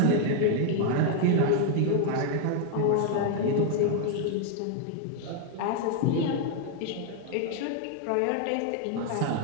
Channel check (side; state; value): both; different; correlation 0.00